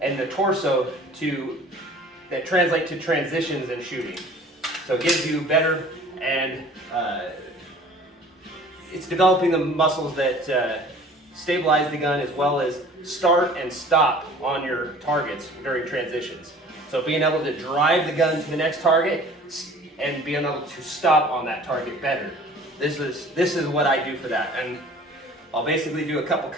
and the torso that translate to transitions in shooting. So it gives you better, and it's developing the muscles that stabilize the gun as well as start and stop on your targets during transitions. So being able to drive the gun to the next target and being able to stop on that target better. This is what I do for that. And I'll basically do a couple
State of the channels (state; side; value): normal; both; correlation 0.48